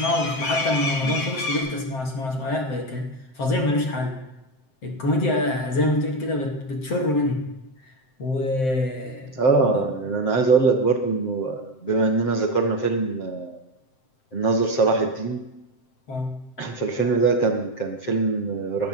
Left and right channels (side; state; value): right; late; 7.7 ms